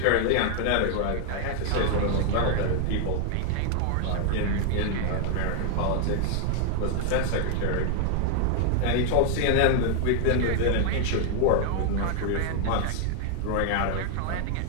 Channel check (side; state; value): both; different; correlation 0.00